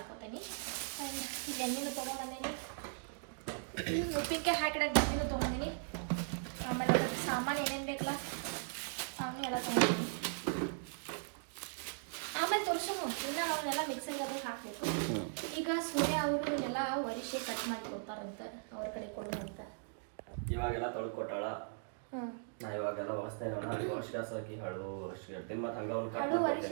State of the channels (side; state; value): left; silent; digital silence